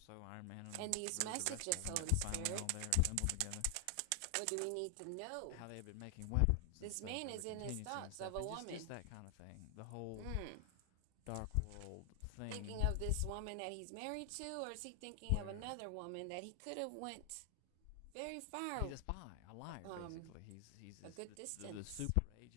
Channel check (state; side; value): different; both; correlation 0.00